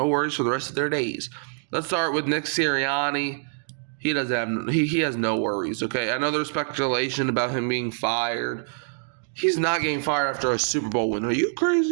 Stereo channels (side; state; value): left; silent; 62 dB below the other